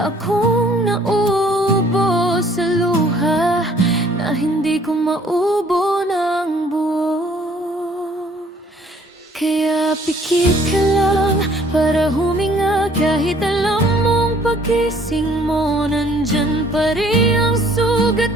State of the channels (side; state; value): both; normal; correlation 0.59